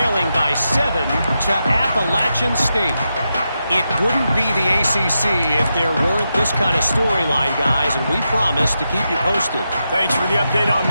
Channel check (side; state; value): both; inverted; correlation -0.87